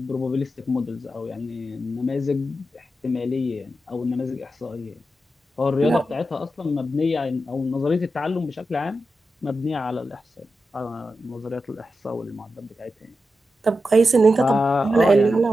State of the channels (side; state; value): both; normal; correlation 0.89